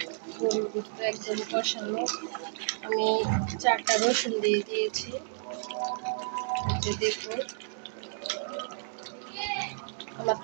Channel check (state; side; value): silent; left; digital silence